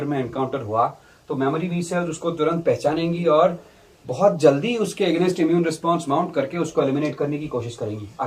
में encounter हुआ तो मेमोरी बी सेल्स उसको तुरंत पहचानेंगी और बहुत जल्दी उसके अगेंस्ट इम्यून रिस्पॉन्स माउंट करके उसको एलिमिनेट करने की कोशिश करेंगी,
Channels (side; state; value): both; identical; correlation 1.00